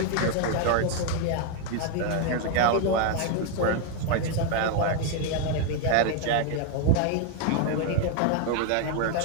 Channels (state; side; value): different; both; correlation 0.01